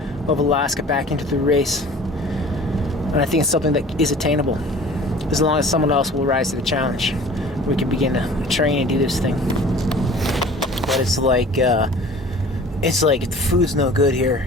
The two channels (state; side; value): normal; both; correlation 0.46